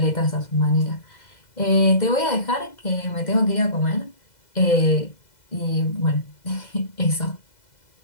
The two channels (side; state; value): right; late; 2.0 ms